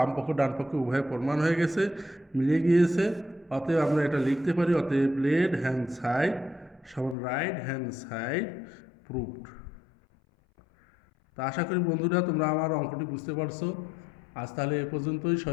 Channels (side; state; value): right; drops out; at 7.2 s